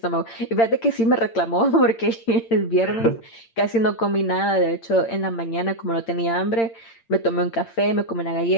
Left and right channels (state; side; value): late; right; 8.8 ms